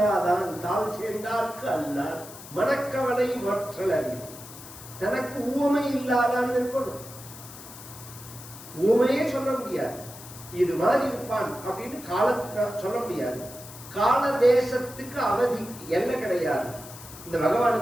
தாழ் சேர்ந்தார்க்கு அல்லான் மனக்கவலை மாற்றல் அறிவு. தனக்கு உவமை இல்லாதான் இருக்கணும். உவமையே சொல்ல முடியாது. இது மாதிரி இருப்பான் அப்படின்னு காலத்துல சொல்ல முடியாது. கால தேசத்துக்கு அவதிக்கு எல்லை கிடையாது. இந்த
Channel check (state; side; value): noise; left; hiss, 16 dB below the sound